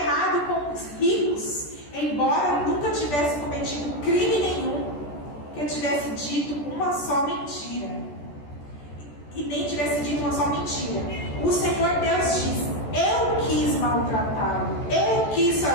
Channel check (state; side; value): late; right; 14 ms